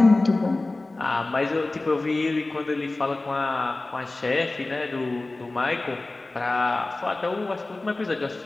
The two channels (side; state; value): right; quieter; 3.0 dB